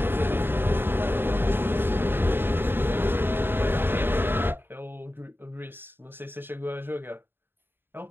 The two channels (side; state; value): left; late; 0.10 ms